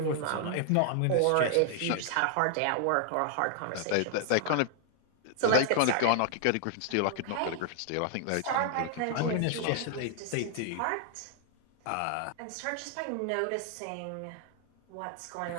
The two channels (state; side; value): different; both; correlation 0.00